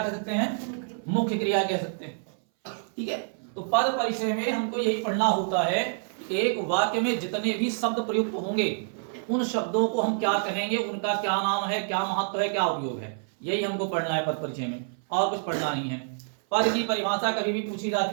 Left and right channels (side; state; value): left; silent; 60 dB below the other